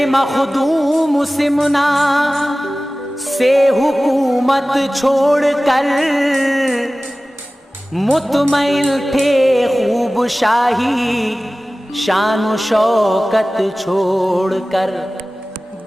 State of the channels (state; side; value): normal; both; correlation 0.97